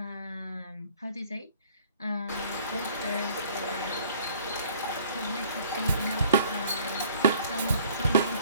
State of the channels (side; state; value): both; inverted; correlation -0.55